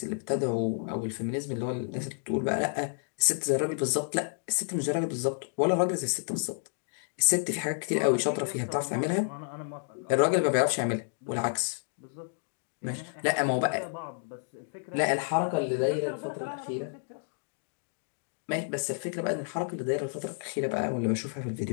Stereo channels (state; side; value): silent; right; digital silence